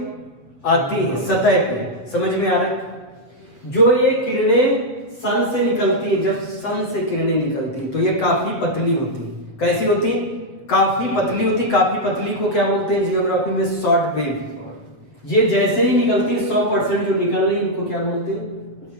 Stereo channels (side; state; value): right; late; 7.9 ms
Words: आती है सतह पे। समझ में आ रहा है? जो ये किरणें सन से निकलती है, जब सन से किरणें निकलती है तो ये काफी पतली होती है। कैसी होती, काफी पतली होती। काफी पतली को क्या बोलते हैं जियोग्राफी में, शॉर्ट वेव। ये जैसे ही निकलती है 100% जो निकल रही है इनको क्या बोलते हैं,